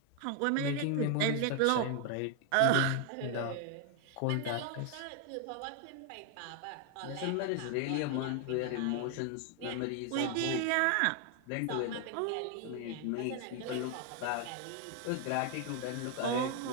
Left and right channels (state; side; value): different; both; correlation 0.00